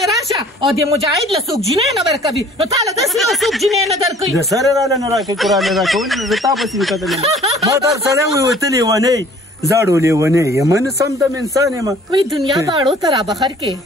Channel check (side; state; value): both; normal; correlation 0.52